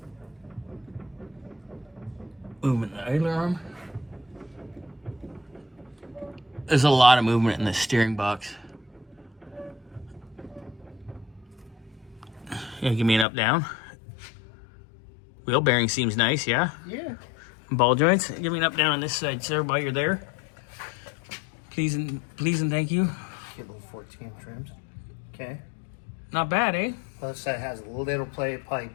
Movement in the idler arm. There's a lot of movement in the steering box. Yeah, give me an up-down. Wheel bearing seems nice, yeah? Yeah. Ball joints. Give me an up-down on this side, sir, while you're there. Please and thank you. Get little 14 trims. Okay. Not bad, eh? Other side has a little play. Probably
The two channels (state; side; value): drops out; right; at 13.2 s